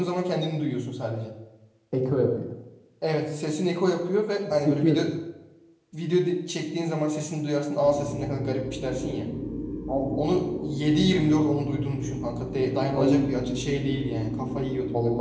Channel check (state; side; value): identical; both; correlation 1.00